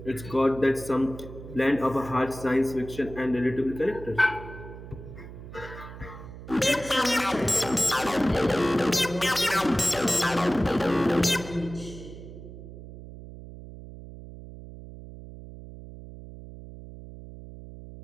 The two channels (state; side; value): noise; right; hum, 14 dB below the sound